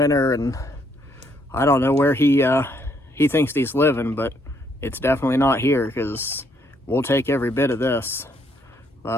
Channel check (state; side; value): normal; both; correlation 0.71